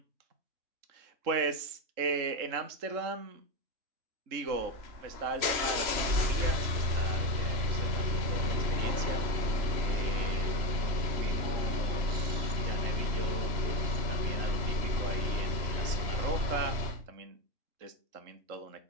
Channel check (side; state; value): left; late; 3.0 ms